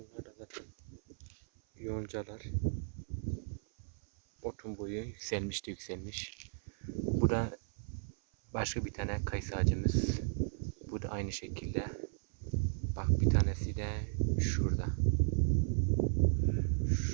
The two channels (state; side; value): silent; left; 54 dB below the other